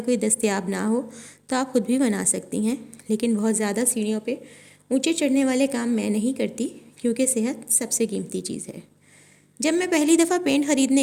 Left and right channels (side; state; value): both; identical; correlation 1.00